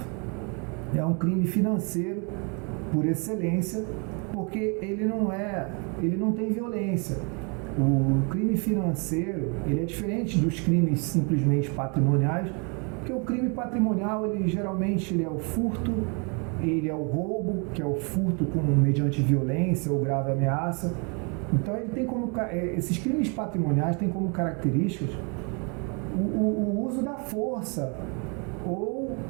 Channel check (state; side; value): quieter; left; 34.8 dB